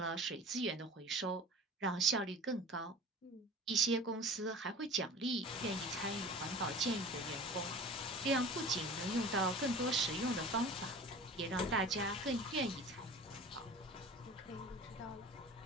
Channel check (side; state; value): both; normal; correlation 0.39